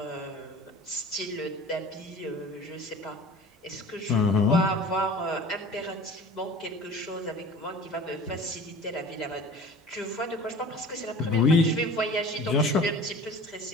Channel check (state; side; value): normal; both; correlation 0.41